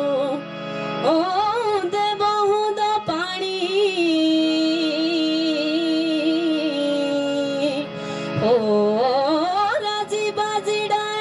हो राजी बाजी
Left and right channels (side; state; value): both; identical; correlation 1.00